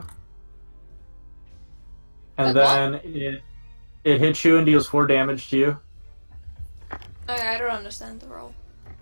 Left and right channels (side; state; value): both; inverted; correlation -1.00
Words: And then it hits you and deals 4 damage to you. Okay, I don't understand the roll.